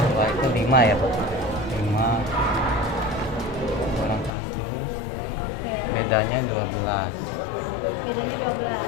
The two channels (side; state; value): right; drops out; at 4.3 s